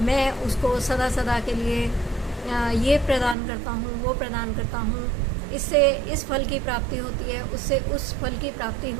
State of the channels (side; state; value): left; drops out; at 3.4 s